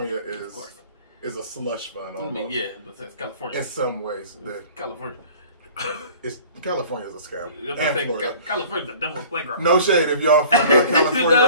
is a slush fund. Almost. I mean, yeah, but it's California in some ways. California. California's a scam. And Florida. California's the devil's playground. No shade if y'all from California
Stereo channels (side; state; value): both; inverted; correlation -0.48